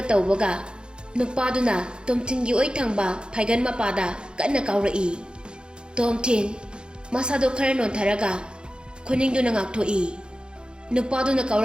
ꯇꯧꯕꯒ ꯅꯨꯄꯥꯗꯨꯅ ꯇꯣꯝ ꯊꯤꯟꯒꯤ ꯑꯣꯏ ꯊꯪꯕ ꯐꯥꯏꯒꯟ ꯃꯄꯥꯗ ꯀꯟꯅ ꯀꯥꯎꯔꯛꯏ꯫ ꯇꯣꯝ ꯊꯤꯟ ꯃꯁꯥꯗꯨ ꯈꯔ ꯅꯣꯟꯊꯔꯒ ꯈꯨꯅꯤꯡꯗꯨꯅ ꯉꯥꯛꯊꯣꯛꯏ꯫ ꯅꯨꯄꯥꯗꯨꯅ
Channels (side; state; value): left; late; 0.051 ms